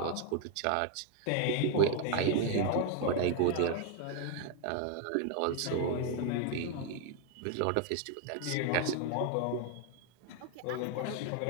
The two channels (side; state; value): both; different; correlation 0.01